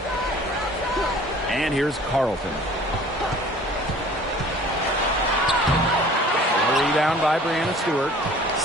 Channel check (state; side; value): normal; both; correlation 0.49